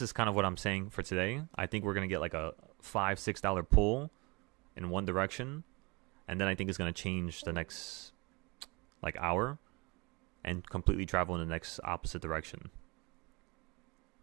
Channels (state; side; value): quieter; left; 27.0 dB